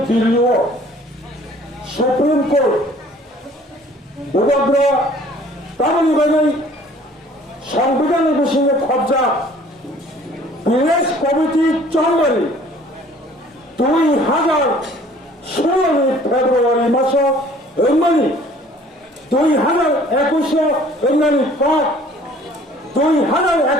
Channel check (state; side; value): normal; both; correlation 0.53